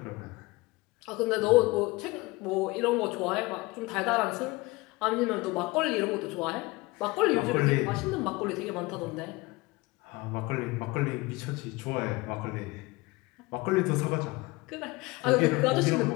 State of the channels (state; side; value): quieter; right; 22.8 dB